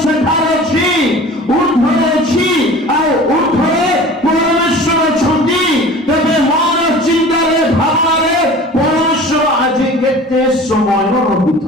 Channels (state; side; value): normal; both; correlation 0.41